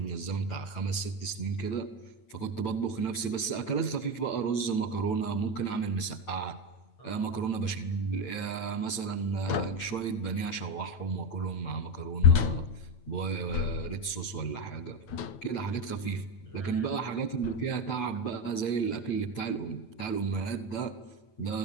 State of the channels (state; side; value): late; right; 9.0 ms